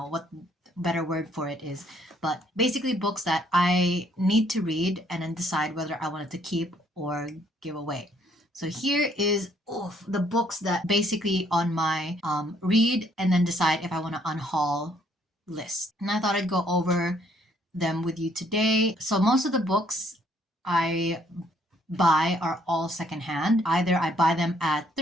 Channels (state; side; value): normal; both; correlation 0.66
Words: what better word for it is, but basically books that I need to read and then decide whether I wanted to keep or give away. So here is the books that basically on my read and then decide if I want to unhaul list. And I thought I'd go over them with you today. So most of the books I buy are all secondhand. Either I buy them at